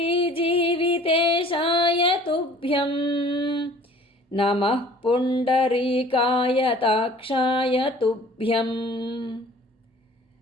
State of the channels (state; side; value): normal; both; correlation 0.50